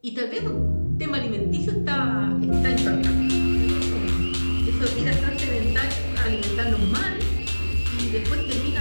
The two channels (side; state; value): both; inverted; correlation -1.00